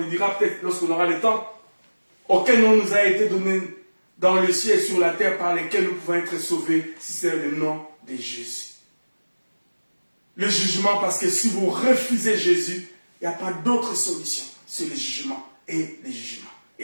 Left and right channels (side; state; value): both; inverted; correlation -1.00